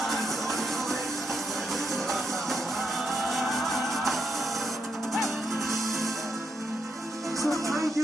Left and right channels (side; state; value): both; normal; correlation 0.81